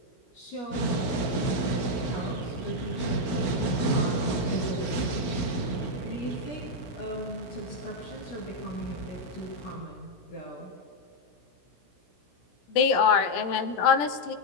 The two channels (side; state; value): right; late; 17 ms